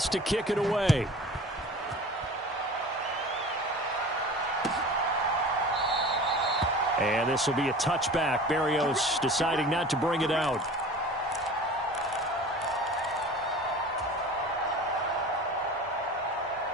to kick it away. And this will be a touchback. Berrios deciding not to bring it out.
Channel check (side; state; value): both; normal; correlation 0.39